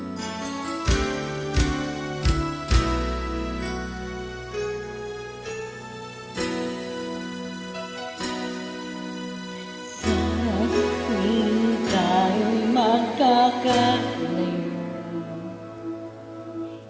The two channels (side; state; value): both; identical; correlation 1.00